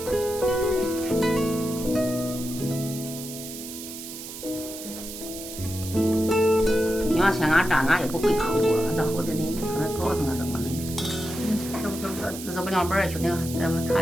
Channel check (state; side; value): noise; right; hiss, 11 dB below the sound